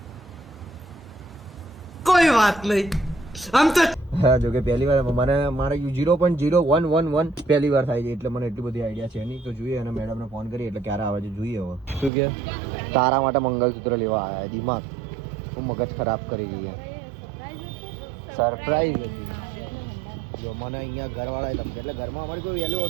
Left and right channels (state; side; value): drops out; left; at 12.1 s